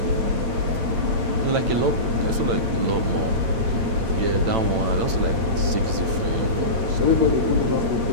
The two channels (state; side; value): late; left; 8.9 ms